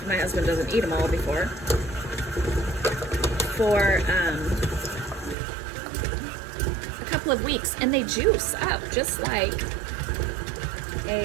My husband doesn't eat them all before. For a couple of weeks, and they juice up just like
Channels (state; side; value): drops out; left; at 5.4 s